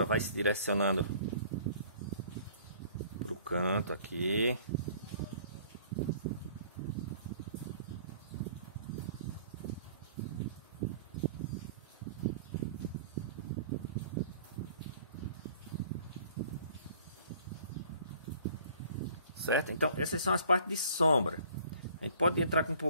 vai se direcionando para o canto aqui. Certo? Então essas são as partes de sombra. A gente pode entrar com um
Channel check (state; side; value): inverted; both; correlation -0.53